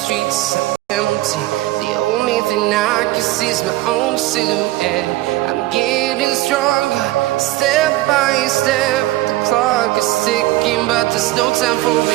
empty. The only thing I can see is my own silhouette. I'm getting stronger, step by step. The clock is ticking, but there's no time for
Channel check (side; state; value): left; quieter; 17.4 dB